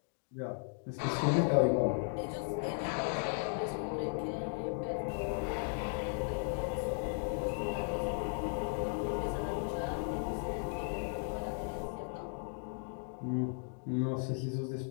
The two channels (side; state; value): right; silent; 54 dB below the other